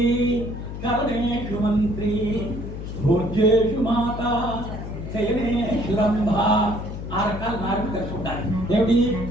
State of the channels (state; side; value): noise; left; hum, 8 dB below the sound